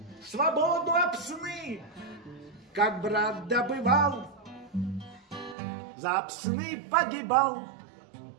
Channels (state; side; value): drops out; left; at 5.6 s